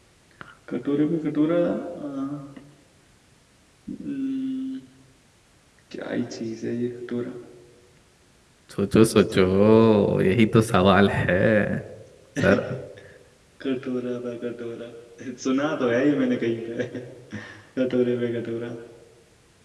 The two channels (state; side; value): identical; both; correlation 1.00